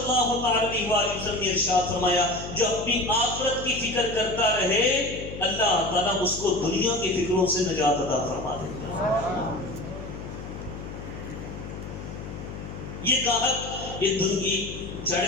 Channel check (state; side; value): noise; left; hum, 10 dB below the sound